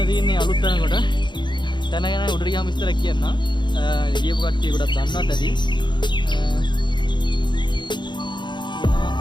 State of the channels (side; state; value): right; late; 0.22 ms